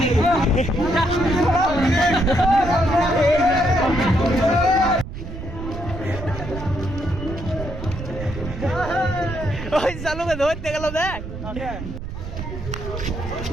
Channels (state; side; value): noise; right; rumble, 9 dB below the sound